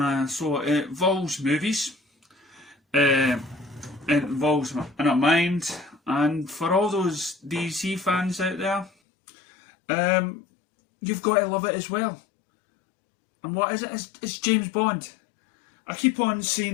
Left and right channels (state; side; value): drops out; right; at 8.9 s